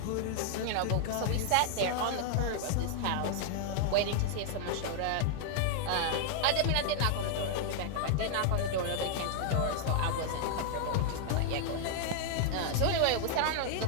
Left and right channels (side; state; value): both; different; correlation 0.00